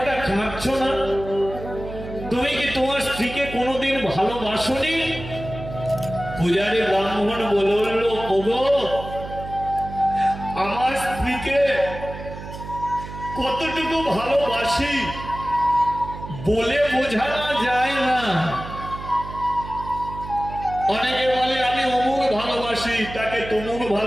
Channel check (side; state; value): right; noise; hum, 11 dB below the sound